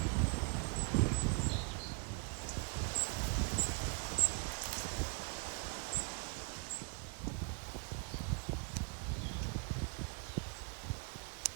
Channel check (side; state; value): left; quieter; 35.3 dB